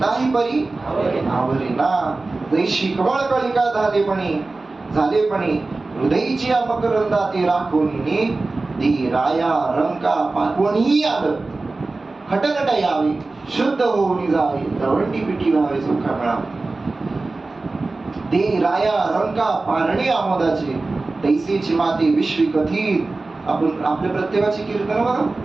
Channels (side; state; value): left; quieter; 3.4 dB